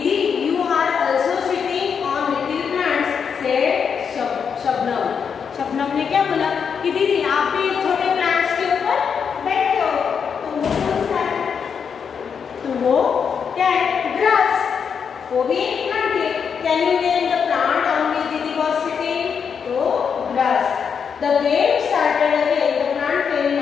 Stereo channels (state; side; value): quieter; right; 6.7 dB